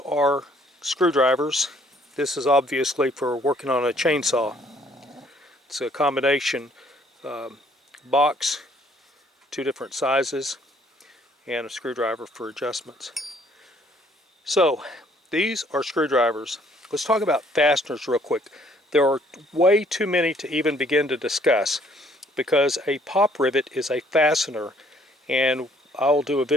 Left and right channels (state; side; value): normal; both; correlation 0.62